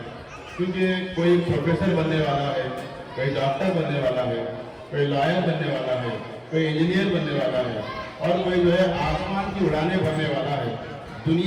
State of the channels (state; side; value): identical; both; correlation 1.00